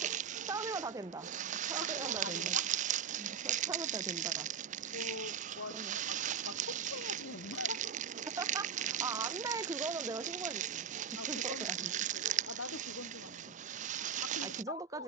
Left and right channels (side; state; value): left; quieter; 7.0 dB